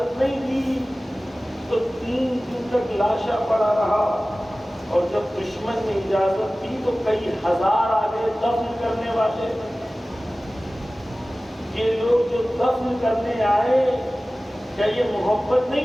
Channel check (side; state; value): both; normal; correlation 0.97